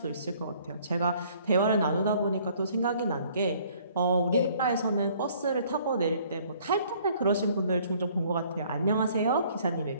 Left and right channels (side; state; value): both; inverted; correlation -0.59